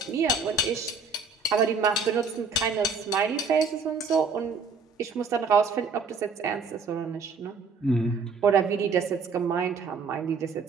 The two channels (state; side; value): quieter; left; 4.7 dB